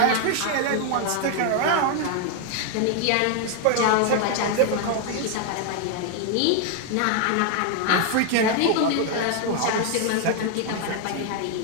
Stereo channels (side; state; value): both; different; correlation 0.00